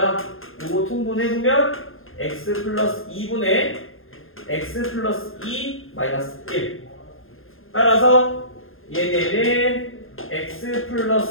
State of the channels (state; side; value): late; right; 0.60 ms